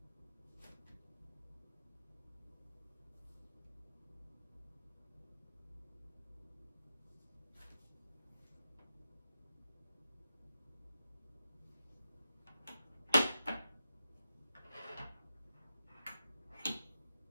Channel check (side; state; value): both; inverted; correlation -0.90